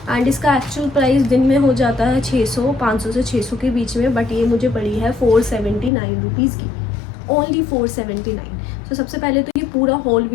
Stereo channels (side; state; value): right; drops out; at 5.9 s